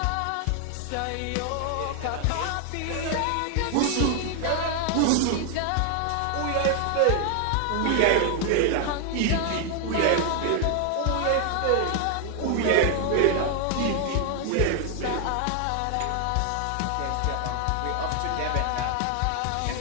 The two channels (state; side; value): different; both; correlation 0.00